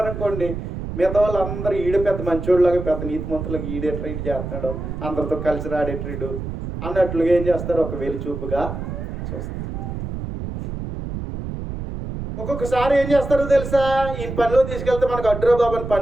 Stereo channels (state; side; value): noise; right; rumble, 6 dB below the sound